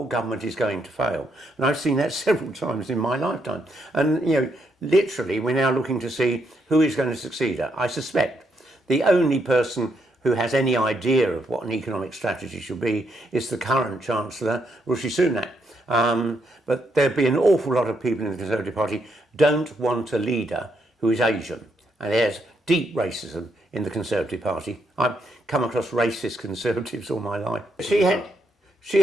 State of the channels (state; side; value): normal; both; correlation 0.77